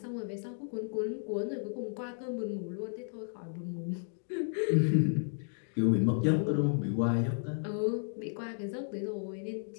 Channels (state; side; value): silent; right; digital silence